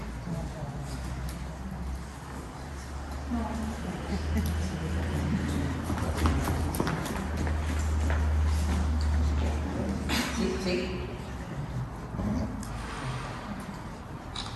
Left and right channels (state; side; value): identical; both; correlation 1.00